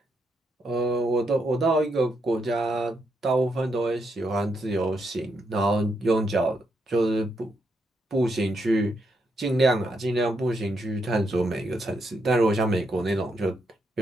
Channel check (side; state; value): both; normal; correlation 0.80